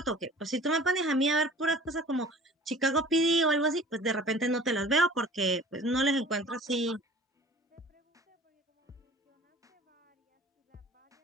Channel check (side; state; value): both; normal; correlation 0.46